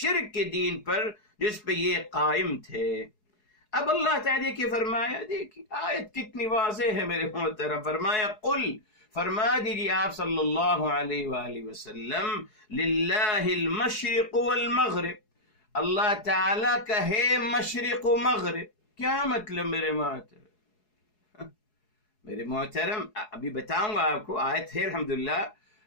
کے دین پر جس پہ یہ قائم تھے۔ اب اللہ تعالیٰ کی فرمایا، دیکھیے آیت کتنی واضح ہے میرے محترم، فرمایا قل، فرما دیجیے آپ صلی اللہ علیہ وآلہ وسلم، للہ المشرق والمغرب، اللہ تعالیٰ کا ہے مشرق و مغرب۔ کیا مطلب میرے محترم؟ میرے محترم ابھی بتاؤں گا آپ کو، آیت ہے الحمدللہ،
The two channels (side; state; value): right; late; 4.7 ms